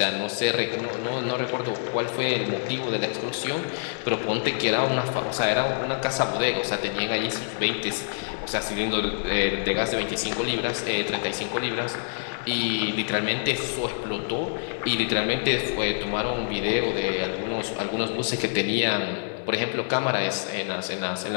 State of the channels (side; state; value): right; silent; digital silence